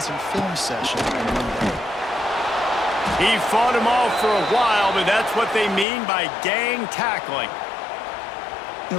film session on Monday. He fought him off for a while, but that's what they mean by gang tackling. You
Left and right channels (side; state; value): right; drops out; at 5.9 s